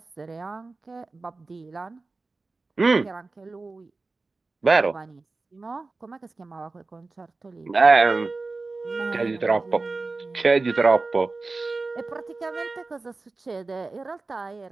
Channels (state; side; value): quieter; left; 3.6 dB